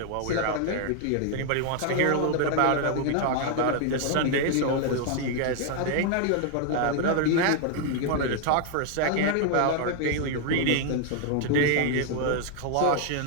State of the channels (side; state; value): both; different; correlation 0.00